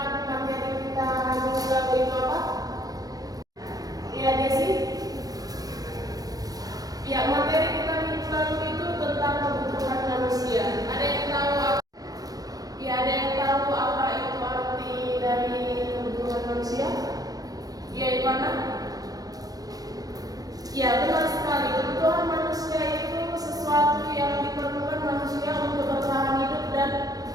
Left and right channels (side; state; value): left; late; 0.18 ms